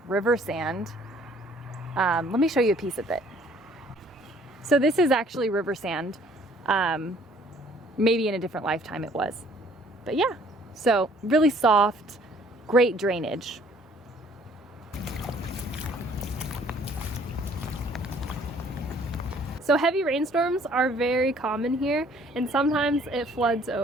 river sand. Let me show you a piece of it. So this is actually river sand. Maybe in a different lifetime it was. But yeah, so really soft, great drainage. So heavy rainstorms are very common here, and sometimes it floods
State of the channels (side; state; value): both; normal; correlation 0.58